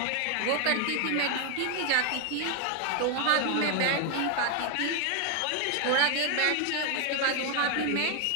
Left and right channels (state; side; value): different; both; correlation 0.01